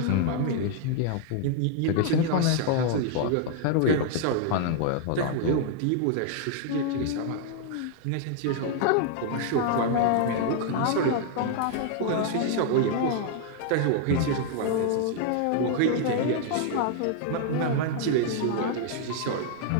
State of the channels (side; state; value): both; different; correlation 0.00